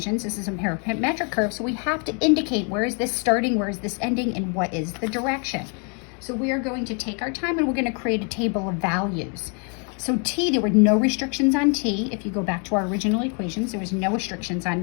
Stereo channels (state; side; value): quieter; right; 37.9 dB